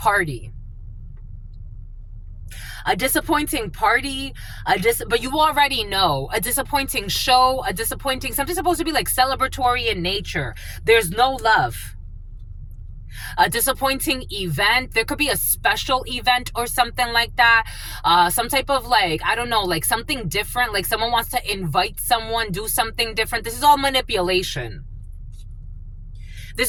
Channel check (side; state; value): both; identical; correlation 1.00